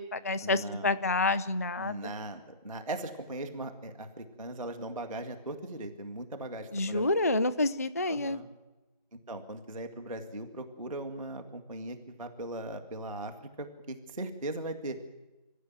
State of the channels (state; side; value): inverted; both; correlation -0.40